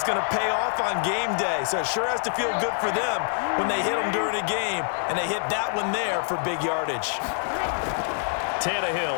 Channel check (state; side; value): silent; right; 61 dB below the other